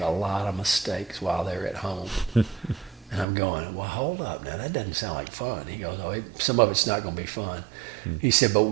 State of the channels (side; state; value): left; drops out; at 3.2 s